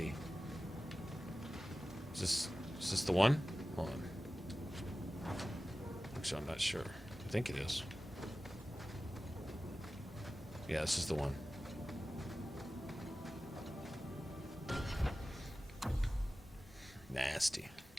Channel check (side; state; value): both; normal; correlation 0.95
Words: Is this the one? Hold on. Actually, I'm not sure. I think it is. Yeah, this is the one. Nasty.